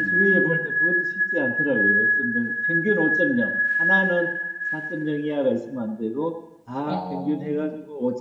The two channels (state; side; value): identical; both; correlation 1.00